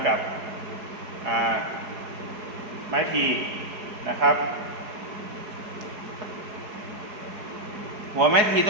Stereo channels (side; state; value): left; late; 4.7 ms